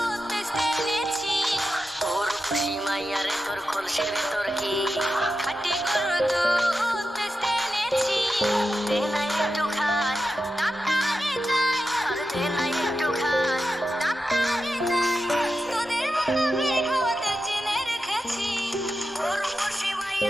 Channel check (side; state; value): both; normal; correlation 0.90